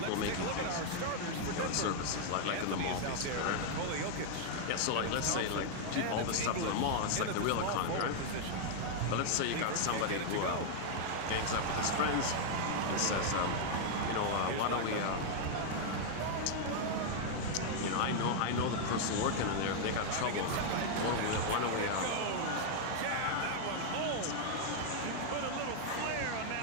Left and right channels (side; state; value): both; different; correlation 0.00